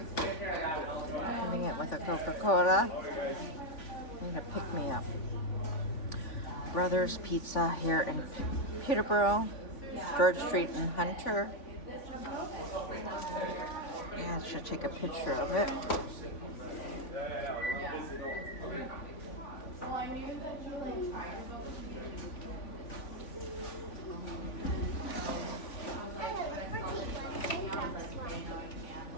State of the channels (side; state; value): right; late; 3.5 ms